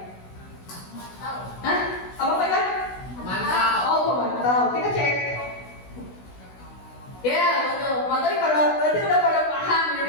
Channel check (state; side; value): late; right; 16 ms